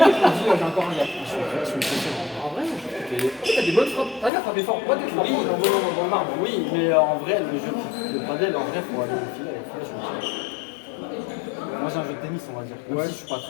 je me dis, j'ai encore un gars. Je suis impressionnant. En vrai, t'as des bonnes frappes. T'as frappé fort. Pas des frappes en volant dans le marbre. Oui, mais en vrai, le jeu de padel, en vrai, pour aller au filet, moi j'ai un jeu de tennis, on va dire. Même si je suis pas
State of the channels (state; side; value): drops out; right; at 4.3 s